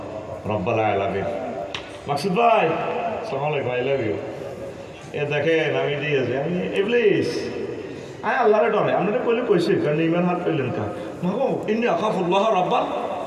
রাব্বুল আলামিন মাকসুদ ভাই আসসালামু আলাইকুম আই লাভ ইউ এ দেখেন আমি দিয়েছি আমি ইবলিস আয় আল্লাহরে ডরে আমরা কইলে কইছি কারণ ইমান হাত পেলেন কা মাগো ইন্নী আখাফুল্লাহ রাব্বুল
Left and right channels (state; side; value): identical; both; correlation 1.00